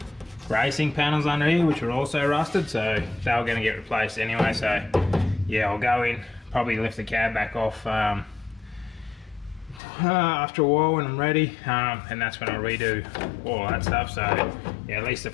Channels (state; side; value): drops out; right; at 9.8 s